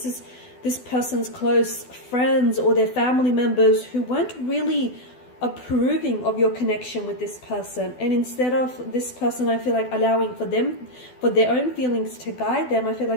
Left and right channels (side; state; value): right; late; 12 ms